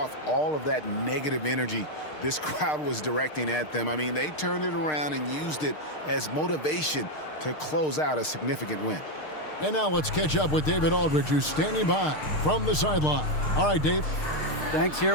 all of that negative energy this crowd was directing at them. I mean, they turned it around and used it as motivation to close out a significant win. And now let's catch up with David Aldridge, who's standing by from the sideline. All right, Dave. Thanks. Here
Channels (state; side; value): late; right; 6.5 ms